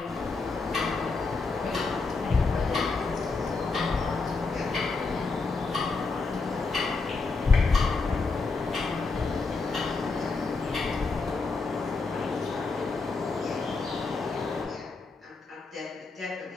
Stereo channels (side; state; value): right; quieter; 4.1 dB